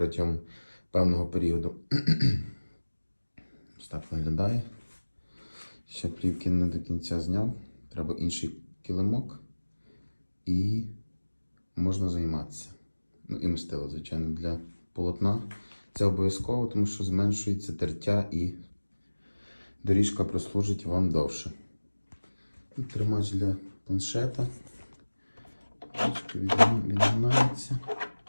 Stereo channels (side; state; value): both; inverted; correlation -1.00